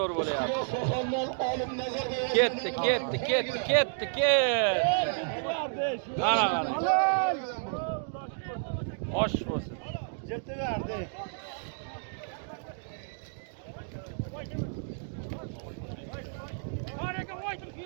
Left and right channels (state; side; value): silent; left; digital silence